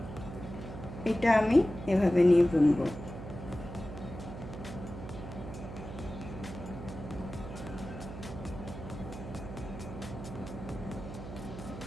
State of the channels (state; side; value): noise; right; hum, 10 dB below the sound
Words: এটা আমি এভাবে নিয়ে বুনবো।